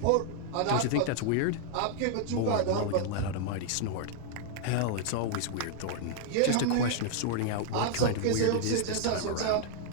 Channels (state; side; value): different; both; correlation -0.01